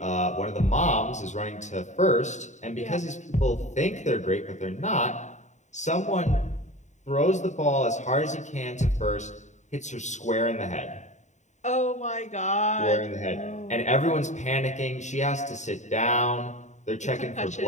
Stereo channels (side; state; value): right; late; 0.34 ms